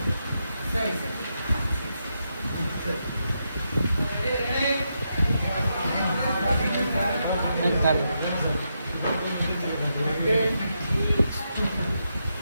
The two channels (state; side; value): inverted; both; correlation -0.83